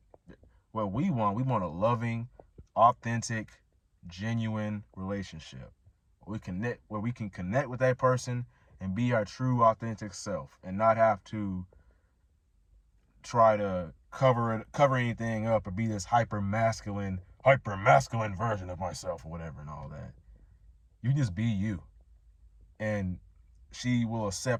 what we want a loving, authentic, genuine relationship where we can connect with that person and be our true, authentic self and not have to try to cover anything up or be this hyper masculine version of myself or whatever and all that. You just be you, and she will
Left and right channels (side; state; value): both; identical; correlation 1.00